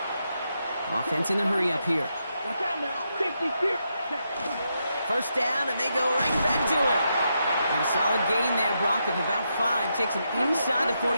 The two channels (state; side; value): inverted; both; correlation -0.82